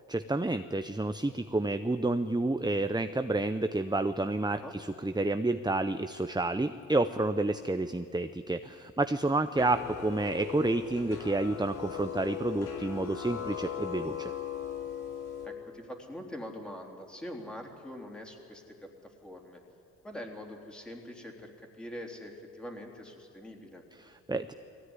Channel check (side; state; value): both; normal; correlation 0.68